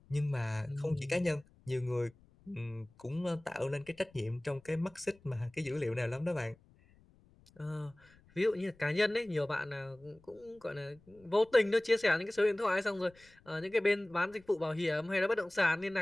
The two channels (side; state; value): left; noise; rumble, 28 dB below the sound